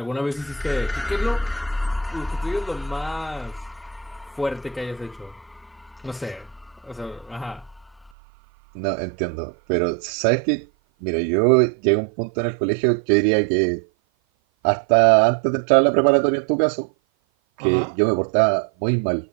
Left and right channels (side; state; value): left; drops out; at 8.1 s